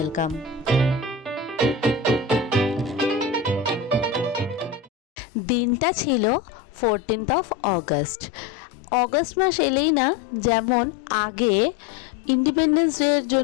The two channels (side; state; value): right; drops out; at 4.9 s